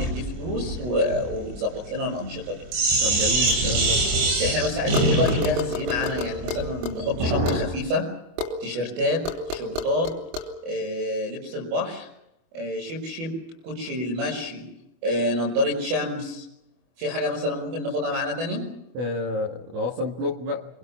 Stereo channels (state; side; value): late; left; 25 ms